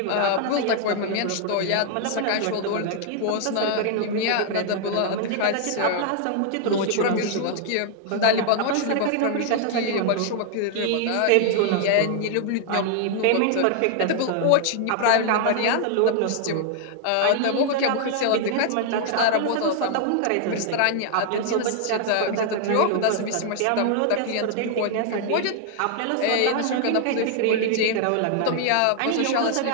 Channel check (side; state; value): both; different; correlation 0.00